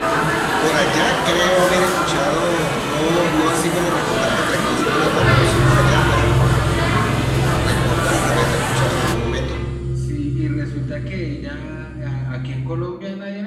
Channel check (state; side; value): identical; both; correlation 1.00